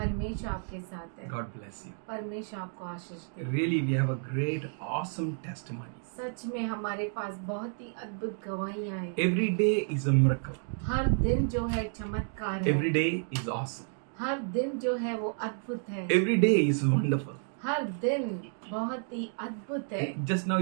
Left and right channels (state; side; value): silent; left; 57 dB below the other